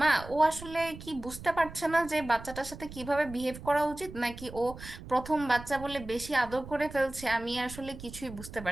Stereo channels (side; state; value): right; noise; rumble, 14 dB below the sound